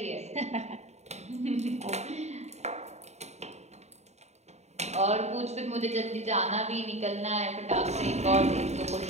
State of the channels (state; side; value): late; left; 0.32 ms